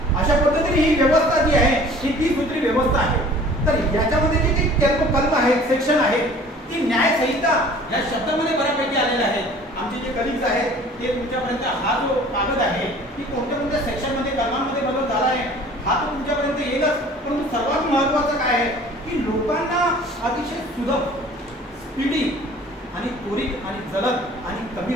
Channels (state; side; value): normal; both; correlation 0.49